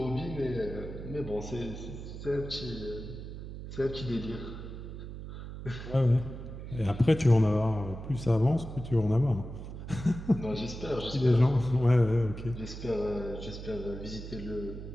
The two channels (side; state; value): right; noise; hum, 10 dB below the sound